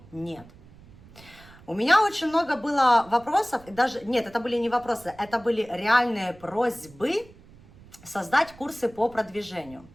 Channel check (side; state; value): right; noise; rumble, 23 dB below the sound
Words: нет? У меня очень много было вопросов, и даже, нет, это были не вопросы, это были реальные просьбы создать курсы по продвижению.